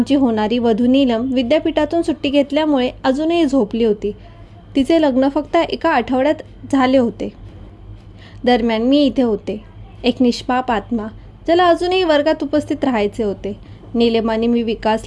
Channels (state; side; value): identical; both; correlation 1.00